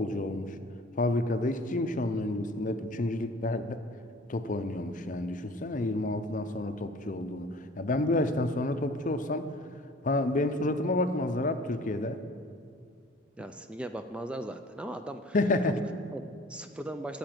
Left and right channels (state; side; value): normal; both; correlation 0.49